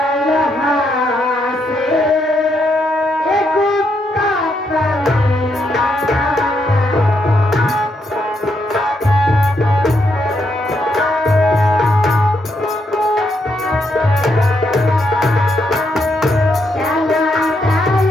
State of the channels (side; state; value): both; normal; correlation 0.78